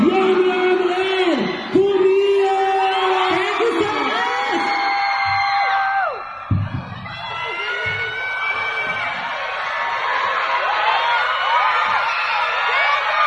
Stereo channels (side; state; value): right; noise; rumble, 30 dB below the sound